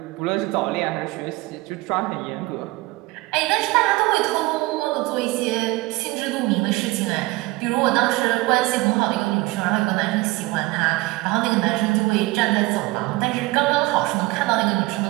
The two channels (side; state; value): left; quieter; 21.2 dB